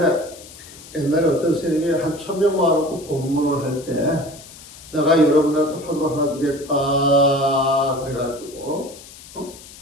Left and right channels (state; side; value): noise; left; hiss, 18 dB below the sound